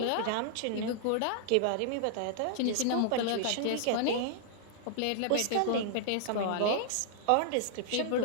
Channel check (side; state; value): both; different; correlation -0.01